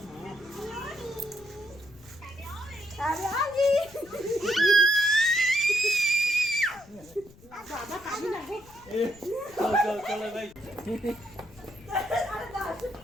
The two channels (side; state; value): left; noise; rumble, 24 dB below the sound